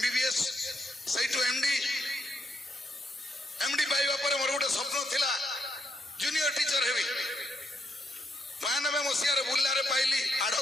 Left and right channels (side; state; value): both; normal; correlation 0.77